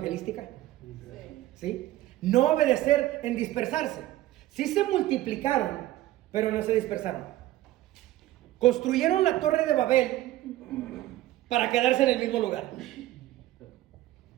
¿Sí? No obedecer en dispersarse. Sí se multiplicaron, pero no se dispersaron. Construyeron la torre de Babel para quedarse en el mismo lugar.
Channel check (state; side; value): quieter; left; 15.5 dB